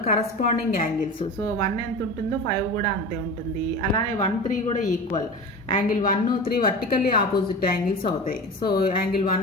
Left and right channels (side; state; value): both; normal; correlation 0.31